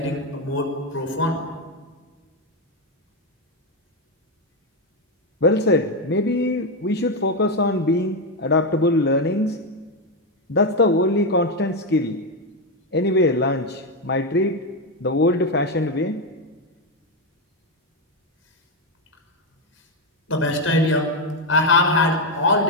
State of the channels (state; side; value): normal; both; correlation 0.07